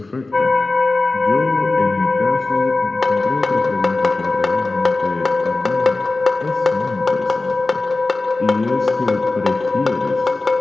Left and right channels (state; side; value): quieter; right; 3.3 dB